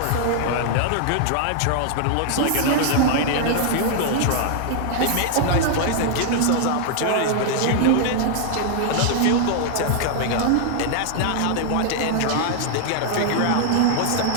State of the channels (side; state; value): both; different; correlation 0.00